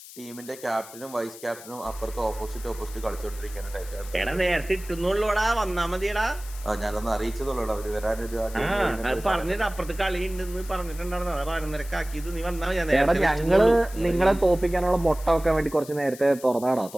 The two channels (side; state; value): left; noise; hiss, 17 dB below the sound